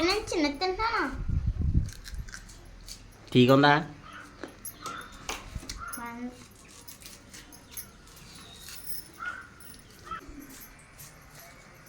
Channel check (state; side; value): identical; both; correlation 1.00